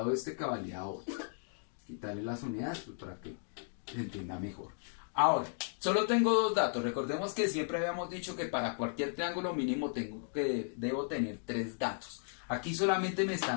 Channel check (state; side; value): silent; right; digital silence